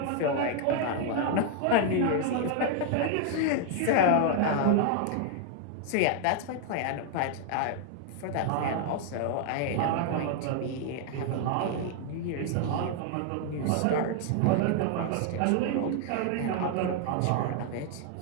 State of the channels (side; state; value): both; different; correlation 0.00